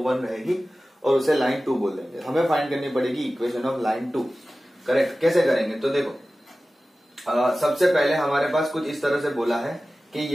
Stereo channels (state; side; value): normal; both; correlation 0.96